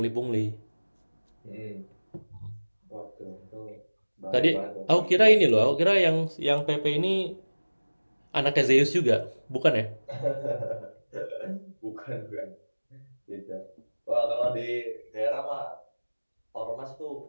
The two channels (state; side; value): inverted; both; correlation -1.00